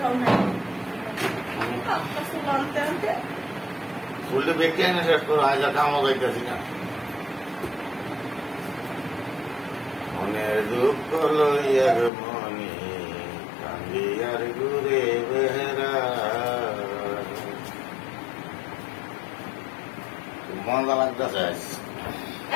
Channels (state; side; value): drops out; right; at 12.1 s